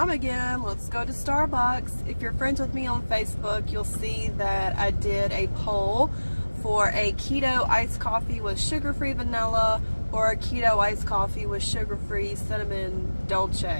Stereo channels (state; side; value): inverted; both; correlation -1.00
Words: again. Let's go to Starbucks. If you're friends with me on Facebook, you'll see that I did a poll for a keto iced coffee with sugar-free vanilla or a keto iced coffee with sugar-free cinnamon